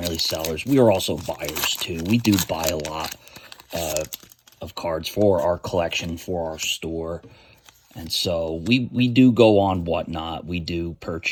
sellers. We are also buyers too. We do buy a lot of cards for our collection, for our store. And so we do go on Whatnot. We do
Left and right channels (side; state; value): both; identical; correlation 1.00